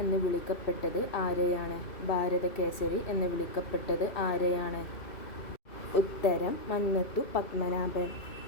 എന്ന് വിളിക്കപ്പെട്ടത് ആരെയാണ്? ഭാരതകേസരി എന്ന് വിളിക്കപ്പെട്ടത് ആരെയാണ്? ഉത്തരം മന്നത്തു പത്മനാഭൻ.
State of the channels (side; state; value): right; late; 2.6 ms